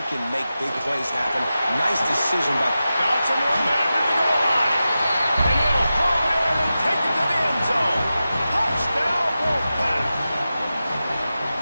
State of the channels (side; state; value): both; inverted; correlation -0.93